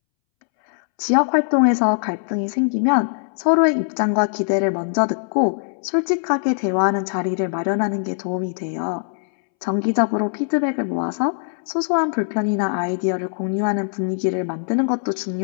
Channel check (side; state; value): right; silent; 65 dB below the other